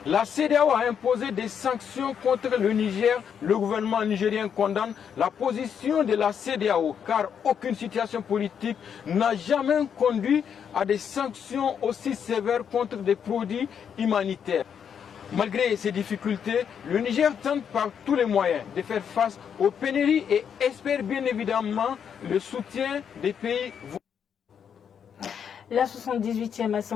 La CEDEAO a imposé des sanctions contre le Niger. Le gouvernement nigérien condamne la position de la CEDEAO car aucune situation politique n'a jamais conduit à des sanctions aussi sévères contre des produits humanitaires. Malgré ces difficultés, le Niger tente par tous les moyens de faire face aux pénuries et espère bien évidemment le soutien des pays voisins. La 78e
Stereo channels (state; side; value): quieter; right; 7.8 dB